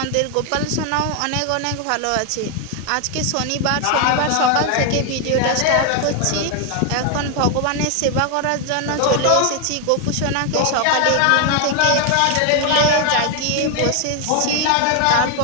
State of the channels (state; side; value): different; both; correlation 0.01